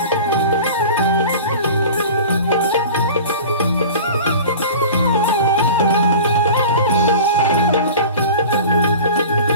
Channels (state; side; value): inverted; both; correlation -0.38